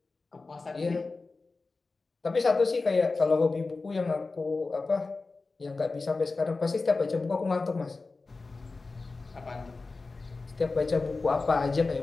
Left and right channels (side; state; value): right; quieter; 3.8 dB